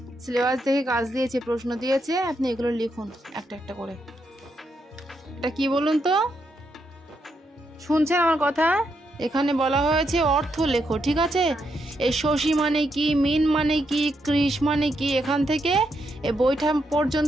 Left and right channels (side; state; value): both; normal; correlation 0.80